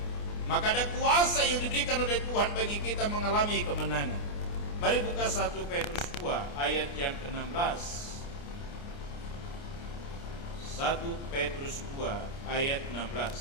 Maka ada kuasa yang diberikan oleh Tuhan bagi kita mengalami kemenangan. Mari buka 1 Petrus 2 ayat yang ke-16. 1 Petrus 2 ayat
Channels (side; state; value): right; late; 29 ms